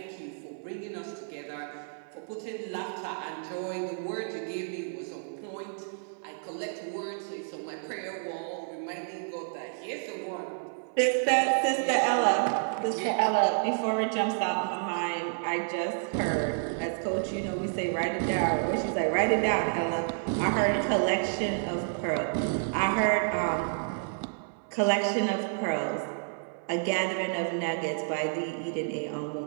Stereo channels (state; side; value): silent; left; 58 dB below the other